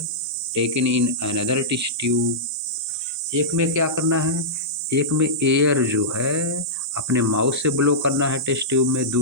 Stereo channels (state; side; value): normal; both; correlation -0.14